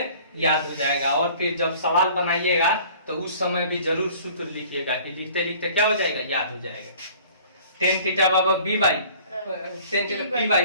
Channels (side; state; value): both; inverted; correlation -0.50